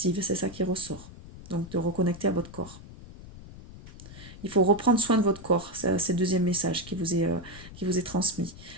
c'est ça qui ressort. Donc de reconnecter à votre corps. Il faut reprendre soin de votre corps, c'est le deuxième message qui vous est transmis.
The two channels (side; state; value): left; noise; rumble, 16 dB below the sound